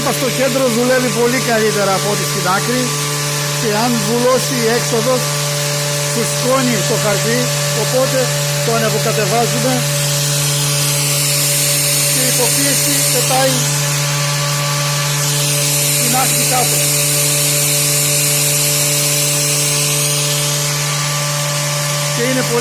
είπα, στο κέντρο δουλεύει πολύ καλύτερα από ό,τι στην άκρη, και αν βουλώσει η έξοδος φουσκώνει το χαρτί, οπότε το ανεβοκατεβάζουμε και η υποπίεση πετάει την άκρη κάτω. Και είναι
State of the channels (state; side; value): identical; both; correlation 1.00